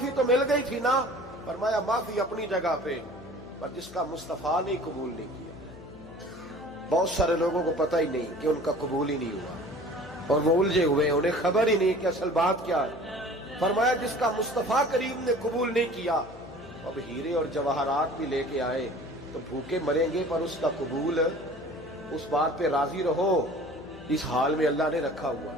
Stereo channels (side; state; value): left; noise; hum, 17 dB below the sound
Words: تو مل گئی تھی نا۔ فرمایا معافی اپنی جگہ پہ، پر جس کا مصطفیٰ نے قبول نہیں کیا۔ بہت سارے لوگوں کو پتہ ہی نہیں کہ ان کا قبول ہی نہیں ہوا، اور وہ الجھے ہوئے، انہیں خبر ہی نہیں کہ اصل بات کیا ہے۔ فرمایا جس کا مصطفیٰ کریم نے قبول نہیں کیا، اب ہیرے اور جواہرات بھی لے کے آئے تو بھوکے مریں گے، پر اس کا قبول، اس بات پہ راضی رہو، اس حال میں اللہ نے رکھا ہوا،